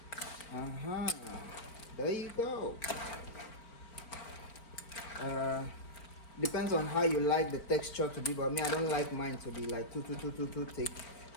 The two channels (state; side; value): late; right; 4.4 ms